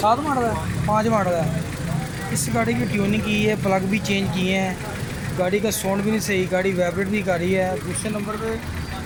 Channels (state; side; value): identical; both; correlation 1.00